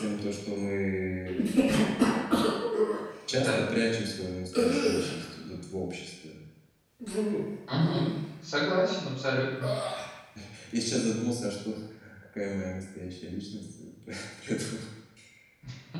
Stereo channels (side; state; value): both; identical; correlation 1.00